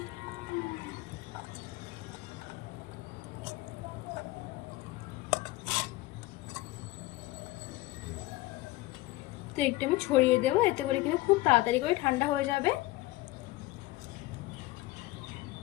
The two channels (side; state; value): right; quieter; 19.0 dB